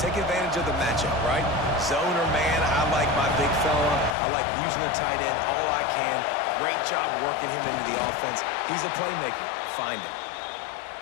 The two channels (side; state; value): right; drops out; at 4.2 s